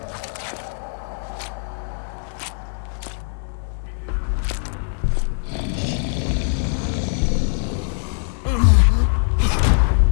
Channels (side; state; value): right; silent; digital silence